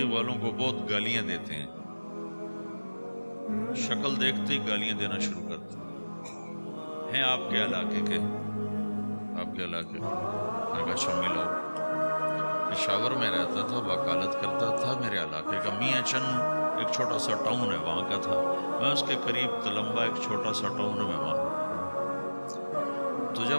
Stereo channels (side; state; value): both; inverted; correlation -1.00